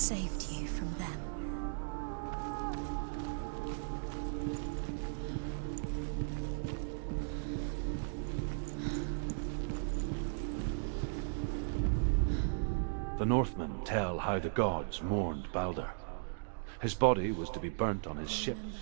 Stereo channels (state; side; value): silent; left; digital silence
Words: you from them. The Northmen tell how the gods mourned Baldur. His body was to be burnt on his ship,